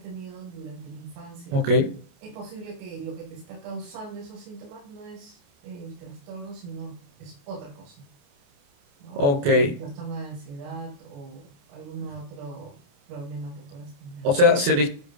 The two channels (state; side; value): late; left; 28 ms